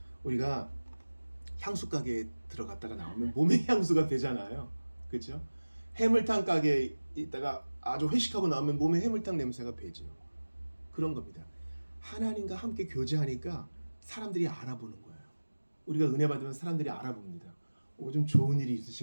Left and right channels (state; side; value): inverted; both; correlation -1.00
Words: 우리가 향수 가게에 들어갔다가 나오면 몸에 향수가 배잖아요. 그렇죠? 해물탕 가게에 있다가 아주 회식하고 나오면 몸에 해물탕 냄새가 배죠. 그런 겁니다. 하나님과 함께 교제하니까 사람들이 알아보는 거예요. 우리가 은혜 받으면 사람들이 알아봅니다. 좀 좋은 일이